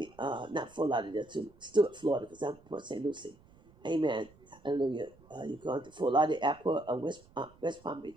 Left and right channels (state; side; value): noise; right; rumble, 26 dB below the sound